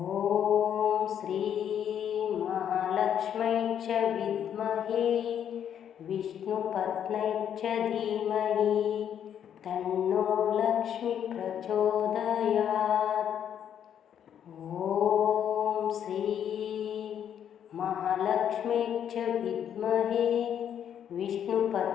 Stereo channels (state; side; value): quieter; right; 9.2 dB